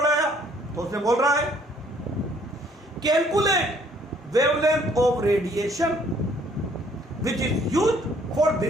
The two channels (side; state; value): both; normal; correlation 0.62